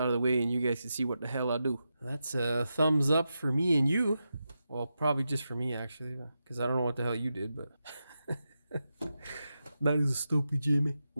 of the way and you guys can see what the hell I do. That's a thumbs up for me and you. Well, probably just for me, actually, because I don't know what the hell you did, but... That is stupid, Jimmy.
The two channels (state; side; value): inverted; both; correlation -0.88